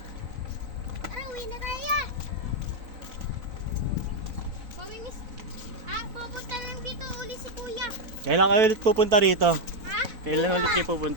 Tara, uwi na tayo. Mamimiss. Ah, pupunta lang dito uli si kuya. Kailan kayo ulit pupunta rito? Ha? Kailan ulit kayo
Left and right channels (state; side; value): late; left; 4.5 ms